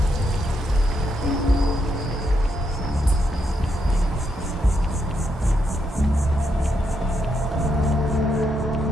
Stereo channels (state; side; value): normal; both; correlation 0.79